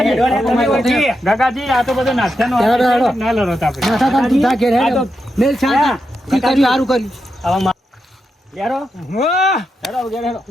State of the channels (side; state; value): both; normal; correlation 0.86